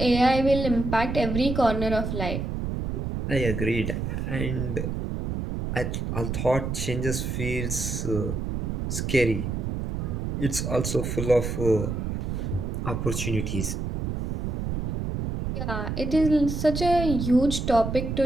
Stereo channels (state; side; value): noise; right; rumble, 3 dB below the sound